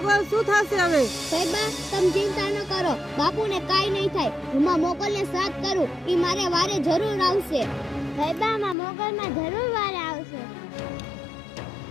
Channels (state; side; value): drops out; right; at 8.8 s